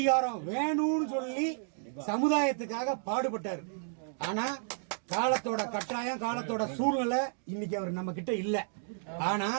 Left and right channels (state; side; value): silent; left; digital silence